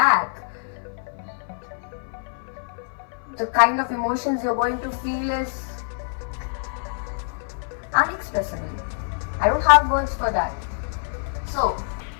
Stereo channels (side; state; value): right; silent; 57 dB below the other